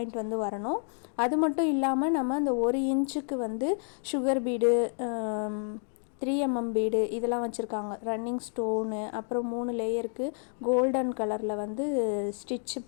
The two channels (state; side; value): silent; right; 58 dB below the other